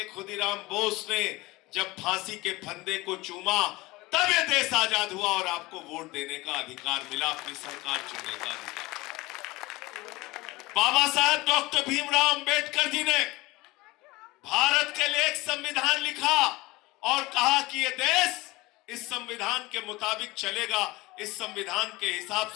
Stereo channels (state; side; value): quieter; right; 21.0 dB